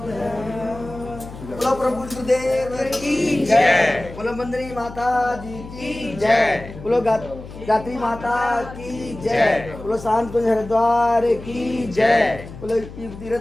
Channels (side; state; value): left; noise; hum, 14 dB below the sound